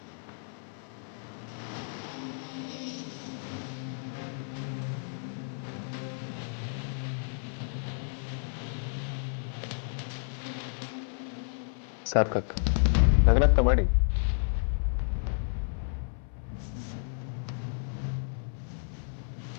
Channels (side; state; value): right; silent; 57 dB below the other